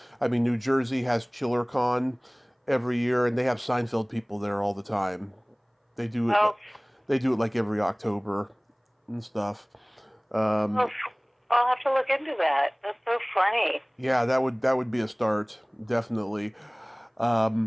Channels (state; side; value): identical; both; correlation 1.00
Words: I mean, New Jersey has ChillerCon every year, and they have Seinfeld people there all the time. They do it. They do it every October and stuff. I'll have to look into that. That's so funny. Yeah, that would be a start, definitely.